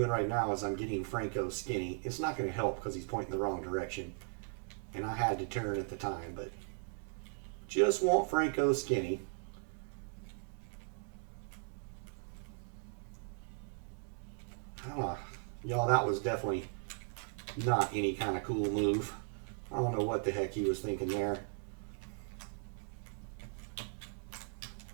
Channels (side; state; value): left; silent; 53 dB below the other